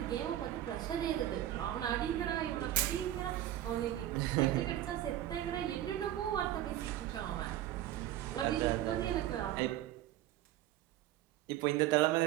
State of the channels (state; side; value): quieter; left; 13.1 dB